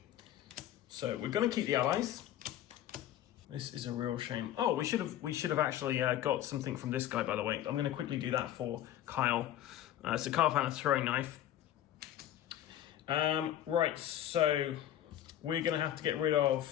So we're going to keep the allies. This is a real shame. Oh, we should have actually got something from this guy, by the way. I'm going to quickly do that for Kyle. So Kyle found a throwing knife. Right, so we're going to have to get rid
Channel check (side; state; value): right; quieter; 12.0 dB